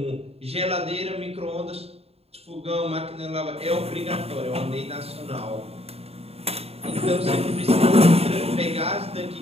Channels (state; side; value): late; left; 0.29 ms